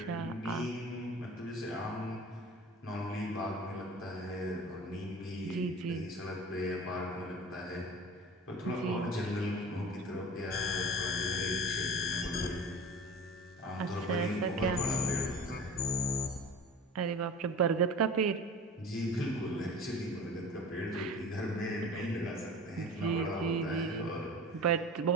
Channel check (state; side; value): normal; both; correlation 0.37